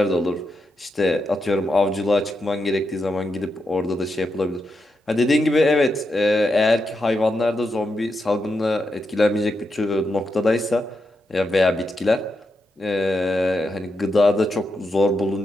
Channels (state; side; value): normal; both; correlation 0.85